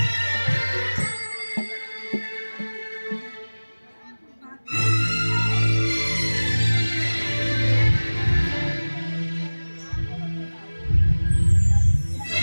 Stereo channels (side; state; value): both; inverted; correlation -1.00